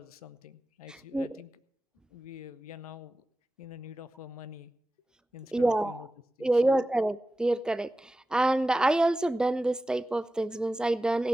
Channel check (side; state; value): both; normal; correlation 0.95